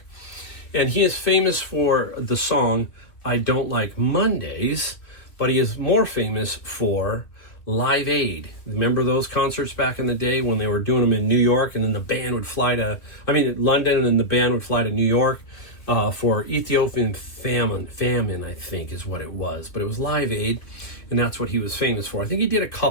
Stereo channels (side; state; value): right; late; 2.3 ms